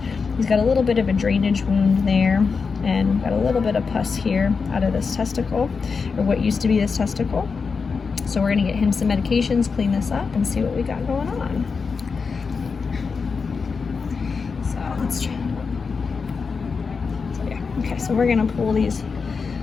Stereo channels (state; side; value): quieter; right; 5.1 dB